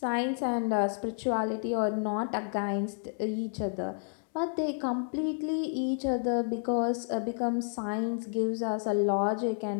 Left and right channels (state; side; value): silent; right; 57 dB below the other